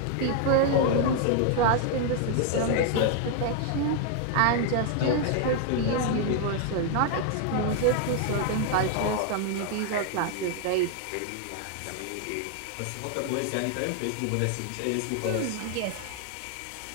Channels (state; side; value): different; both; correlation 0.00